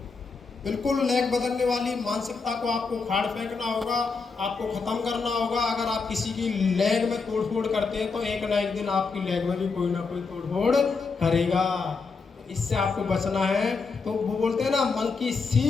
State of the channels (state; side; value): quieter; right; 4.7 dB